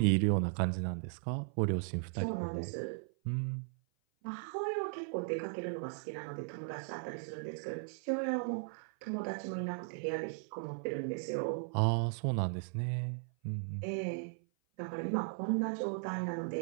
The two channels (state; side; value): silent; left; 53 dB below the other